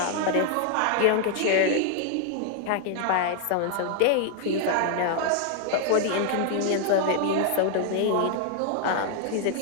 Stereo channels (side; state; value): both; different; correlation 0.00